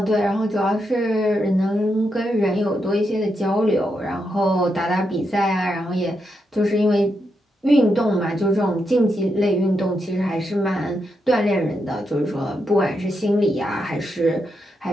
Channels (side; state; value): both; normal; correlation 0.83